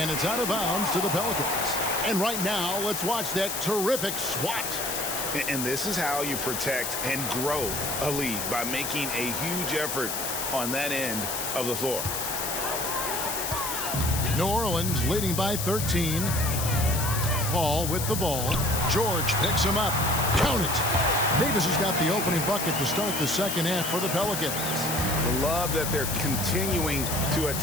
And it's out of bounds to the Pelicans. And right now, let's watch that terrific swat. And this is how you protect and grow a lead, by making a huge effort on that end of the floor. New Orleans leading by 13. Paul with the ball. George picks him up. Count it. Davis has got the opening bucket to start the second half for the Pelicans. Love that they're continuing to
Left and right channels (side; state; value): left; noise; hiss, 3 dB below the sound